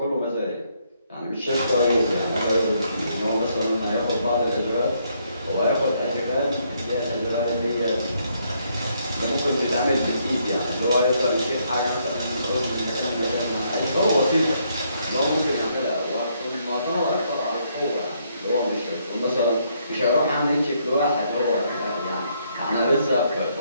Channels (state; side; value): inverted; both; correlation -0.73